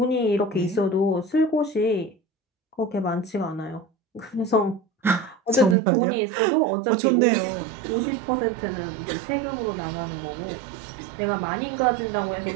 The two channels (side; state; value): left; drops out; at 5.8 s